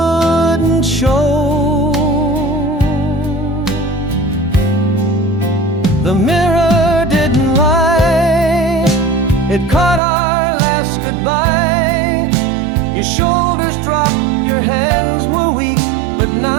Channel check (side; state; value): left; drops out; at 10.0 s